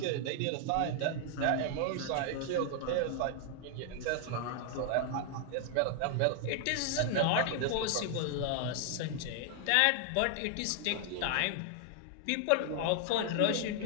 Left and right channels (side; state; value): both; different; correlation 0.00